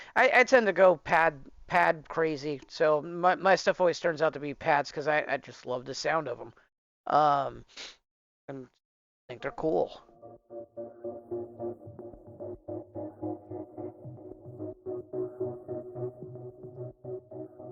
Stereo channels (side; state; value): both; identical; correlation 1.00